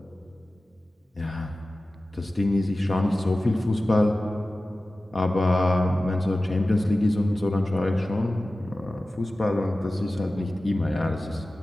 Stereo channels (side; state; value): both; normal; correlation 0.96